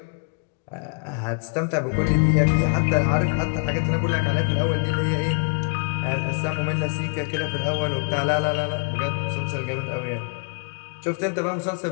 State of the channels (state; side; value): quieter; right; 36.2 dB